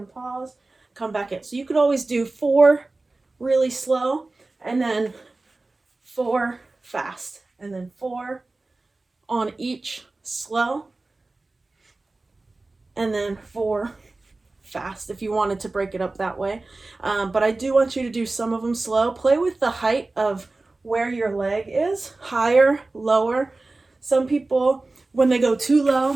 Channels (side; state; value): left; quieter; 3.2 dB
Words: pause, come back in. So you could always do 4 really slow and then 4 fast and then 4 on each slow and then 4 fast if you wanted to break it up that way. But I do want you to do some of them slow. Play with the height of where your leg is, higher, lower. Some people, when they go too